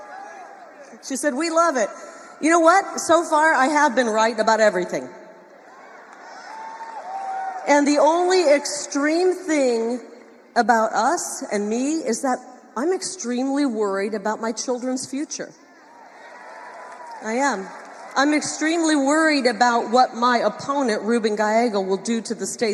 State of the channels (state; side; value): identical; both; correlation 1.00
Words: She said, "We love it." You know what? So far, I have been right about everything. And the only extreme thing about us and me is that I'm extremely worried about my children's future. I am. I'm extremely worried about what my opponent, Ruben Gallego, will do to the